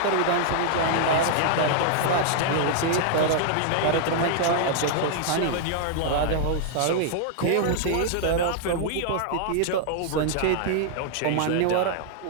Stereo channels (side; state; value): both; different; correlation -0.01